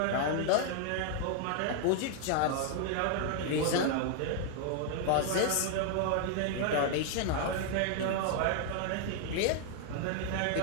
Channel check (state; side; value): different; both; correlation 0.00